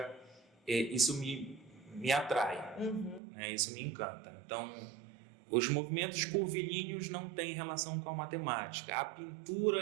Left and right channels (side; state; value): left; drops out; at 3.2 s